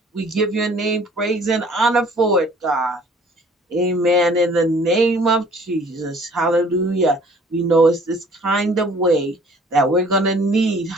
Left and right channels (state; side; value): normal; both; correlation 0.55